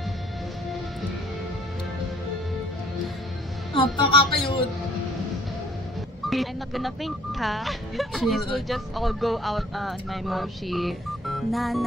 Napaka-cute. I'm not gonna faint, ha? This will just all go out on my moshi. Na,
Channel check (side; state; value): both; normal; correlation 0.57